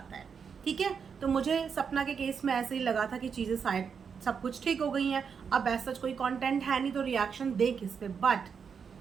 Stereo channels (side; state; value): left; quieter; 6.4 dB